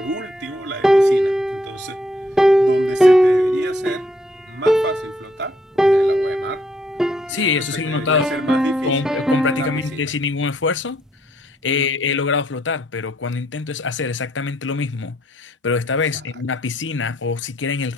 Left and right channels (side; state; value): both; normal; correlation 0.70